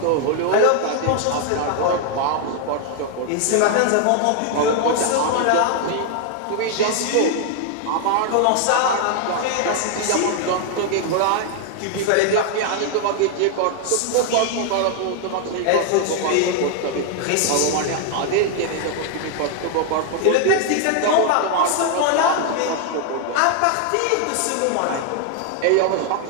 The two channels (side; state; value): both; different; correlation 0.00